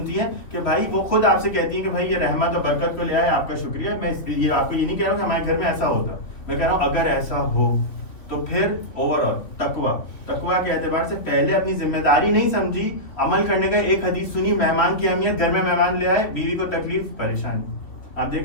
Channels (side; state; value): right; late; 3.1 ms